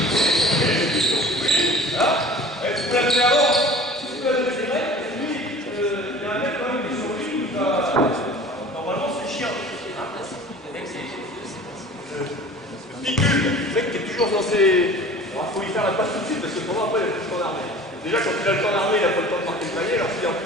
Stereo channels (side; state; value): both; normal; correlation 0.43